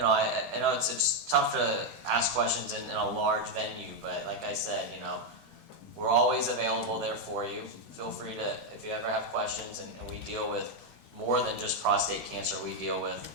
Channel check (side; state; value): both; normal; correlation 0.02